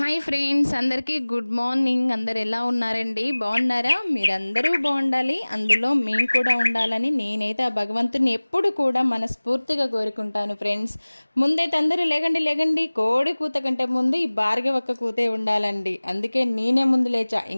friends, అందరికీ good morning. అందరు ఎలా ఉన్నారండి? బాగున్నారా? మీరందరూ బాగుండాలి, అందులో మేము కూడా ఉండాలని నేనైతే ఆ భగవంతుని ఎప్పుడు కూడా మనస్ఫూర్తిగా కోరుకుంటాను ఫ్రెండ్స్. ముందైతే అందరూ లేగండి లేగండి, కోడి కూత కంటే ముందు ఈ భార్గవక్క కూతే ఉండాలండి. అందుకే నేనే ముందు లేచా.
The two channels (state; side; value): inverted; both; correlation -1.00